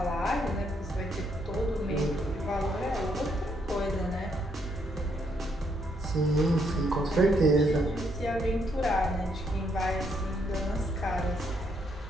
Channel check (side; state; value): both; normal; correlation 0.74